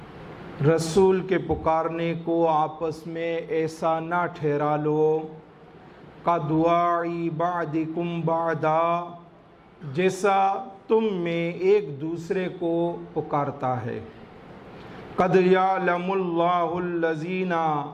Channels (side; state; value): both; identical; correlation 1.00